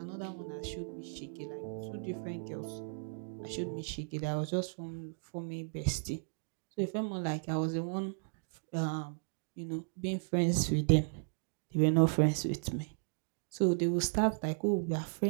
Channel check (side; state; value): left; silent; digital silence